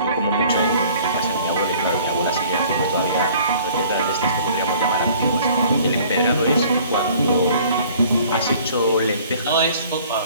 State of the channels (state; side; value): inverted; both; correlation -0.53